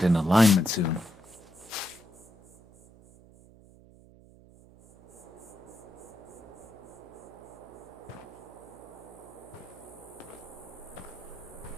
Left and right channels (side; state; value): right; noise; hum, 22 dB below the sound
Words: in alignment soon.